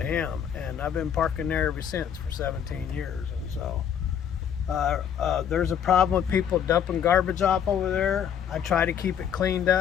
him, and I've been parking there ever since for 17 years. And so there's a problem with people dumping garbage off over there. I try to keep it cleaned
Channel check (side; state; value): right; quieter; 8.7 dB